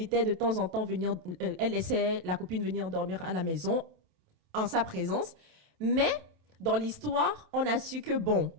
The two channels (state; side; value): late; left; 27 ms